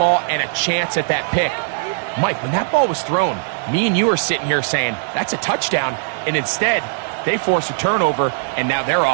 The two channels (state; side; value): silent; left; digital silence